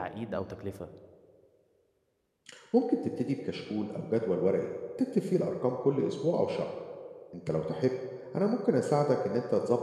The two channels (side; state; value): both; identical; correlation 1.00